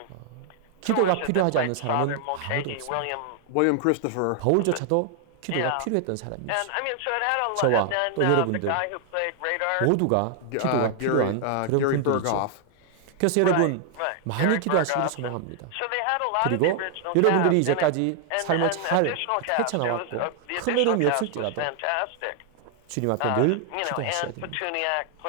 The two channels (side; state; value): both; different; correlation 0.00